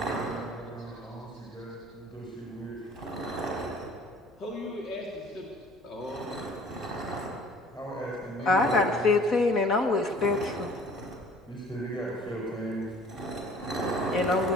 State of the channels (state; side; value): normal; both; correlation 0.51